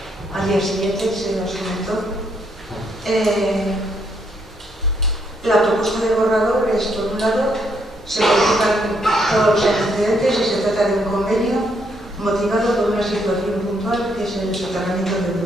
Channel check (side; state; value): both; normal; correlation 0.74